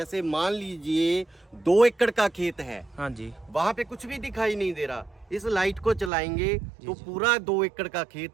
मान लीजिए 2 एकड़ का खेत है, हाँ जी। वहां पे कुछ भी दिखाई नहीं दे रहा। इस लाइट को चलाएंगे तो जी। पूरा 2 एकड़ का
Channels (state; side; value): drops out; left; at 6.1 s